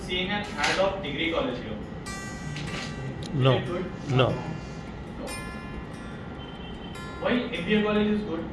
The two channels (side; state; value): both; identical; correlation 1.00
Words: seeing an ad of degree college here. No. Is it good? No. No. Why MBA college is good?